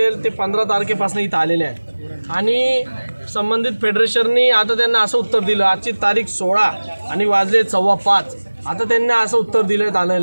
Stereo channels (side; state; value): both; inverted; correlation -1.00